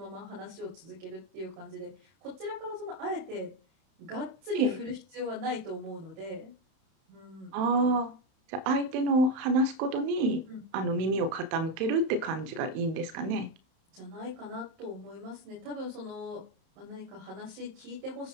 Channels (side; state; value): left; late; 31 ms